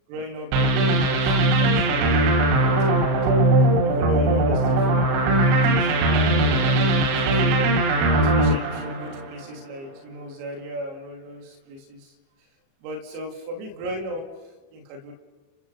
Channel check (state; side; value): late; left; 37 ms